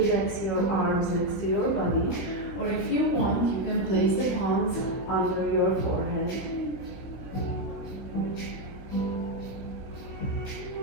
your arms next to your body, or if you want, you can place the palms under your forehead.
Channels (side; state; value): right; late; 16 ms